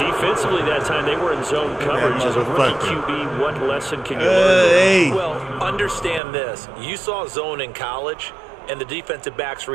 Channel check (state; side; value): drops out; left; at 6.2 s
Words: Defensively that time, they were in zone coverage. As a rookie QB, what lesson can you learn? Well, understand this. You saw zone in college, and the defensive backs